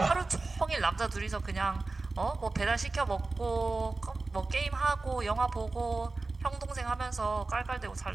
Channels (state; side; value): quieter; left; 3.5 dB